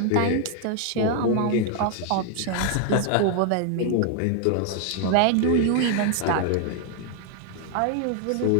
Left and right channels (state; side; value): different; both; correlation 0.00